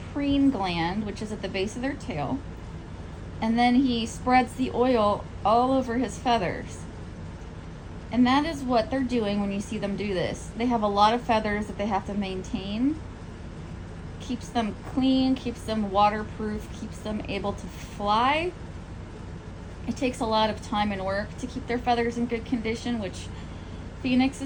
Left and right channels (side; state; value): both; identical; correlation 1.00